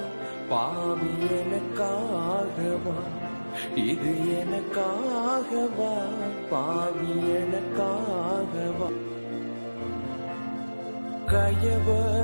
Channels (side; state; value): both; inverted; correlation -1.00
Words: பாவி எனக்காகவா, இது எனக்காகவா பாவி எனக்காகவா.